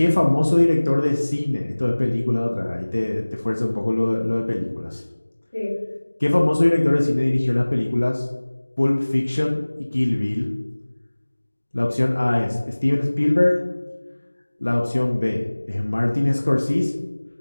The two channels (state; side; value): inverted; both; correlation -1.00